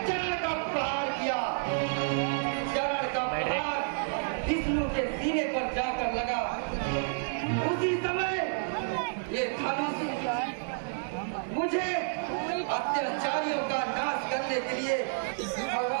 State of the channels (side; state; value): left; silent; 58 dB below the other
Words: चरण का प्रहार किया। चरण का प्रहार विष्णु के सीने पर जाकर लगा। उसी समय ये धनुष मुझे अत्याचारियों का नाश करने के लिए